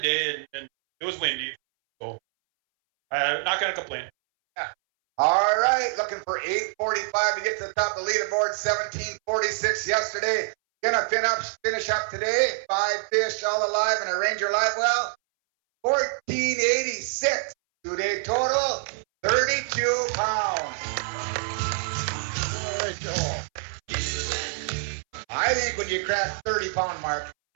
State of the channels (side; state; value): left; silent; 61 dB below the other